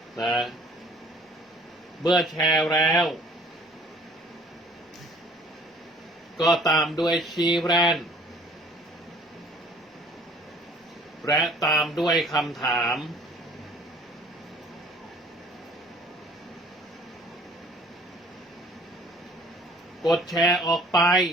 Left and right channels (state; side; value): normal; both; correlation 0.54